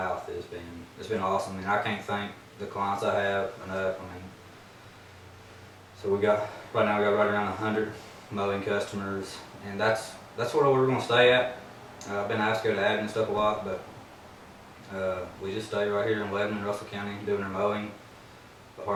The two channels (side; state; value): both; identical; correlation 1.00